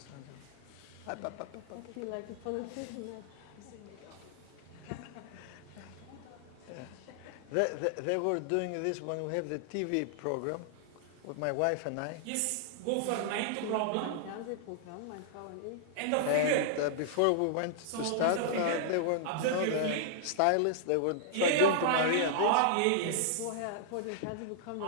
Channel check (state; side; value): different; both; correlation -0.01